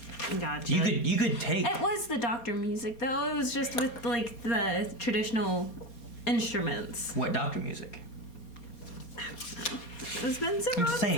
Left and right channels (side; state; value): right; late; 4.3 ms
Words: Gotcha. You could take. It was the Doctor music, though. It was just with like the traditional instruments. What Doctor music? It's been several I'm just saying,